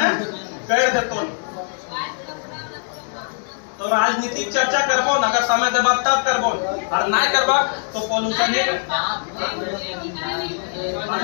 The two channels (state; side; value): silent; right; 65 dB below the other